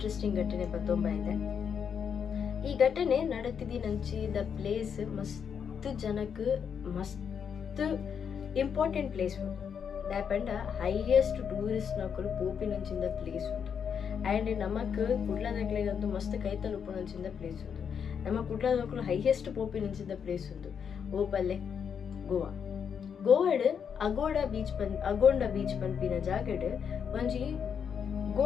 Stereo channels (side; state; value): right; quieter; 7.2 dB